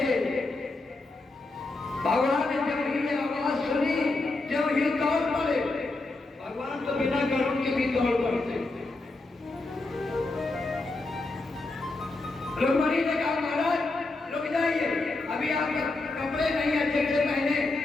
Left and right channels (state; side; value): quieter; right; 3.2 dB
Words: भगवान ने जब ये आवाज सुनी, जब ये दौड़ पड़े, भगवान तो बिना गरुड़ के भी दौड़ पड़ते। रुक्मणी ने कहा महाराज रुक जाइए, अभी आपके कपड़े नहीं अच्छे से पहने